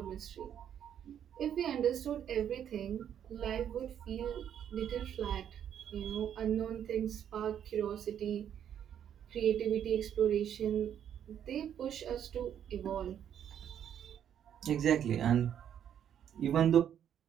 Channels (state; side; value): quieter; left; 9.4 dB